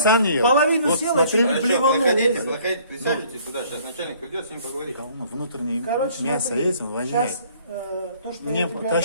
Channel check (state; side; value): inverted; both; correlation -0.58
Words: вот ел. половину Вот съел, смотри, а чуть блеванул. проходите, присаживайтесь сюда, сейчас начальник придет, с ним поговорит. внутреннее Короче, мясо смотри, есть, он воняет. сейчас то, что Мне я тебе